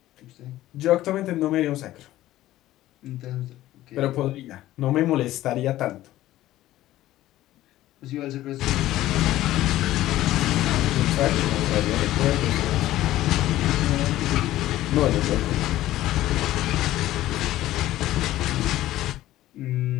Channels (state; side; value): quieter; right; 14.9 dB